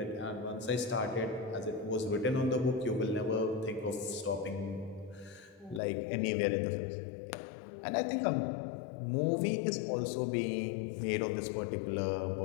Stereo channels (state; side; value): drops out; right; at 5.8 s